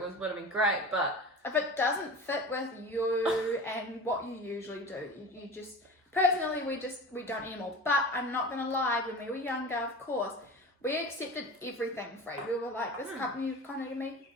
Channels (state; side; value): normal; both; correlation 0.34